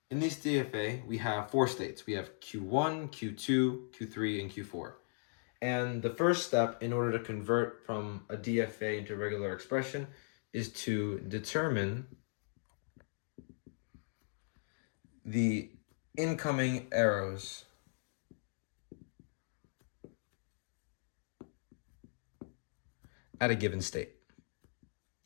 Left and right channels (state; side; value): silent; right; digital silence